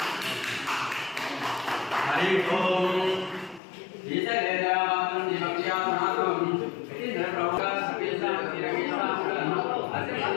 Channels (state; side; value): drops out; right; at 3.6 s